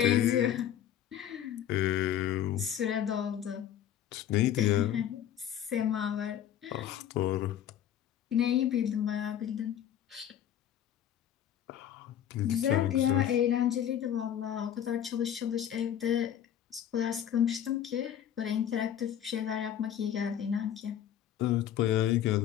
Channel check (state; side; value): quieter; right; 10.3 dB